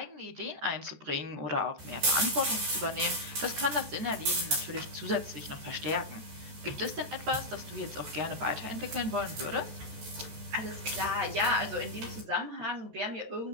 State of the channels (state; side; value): late; left; 14 ms